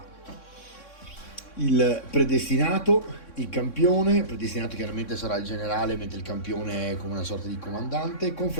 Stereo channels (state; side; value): late; right; 3.6 ms